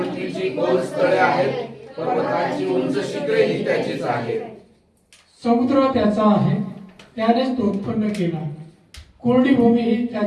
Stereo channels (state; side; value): identical; both; correlation 1.00